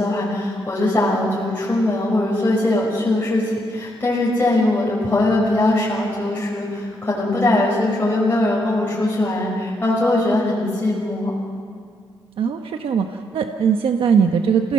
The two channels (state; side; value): normal; both; correlation 0.75